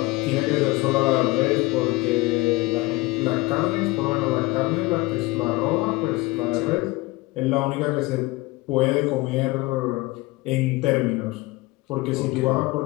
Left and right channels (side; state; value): right; quieter; 21.6 dB